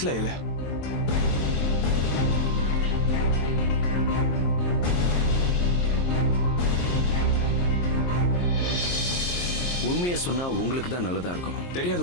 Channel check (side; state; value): right; late; 23 ms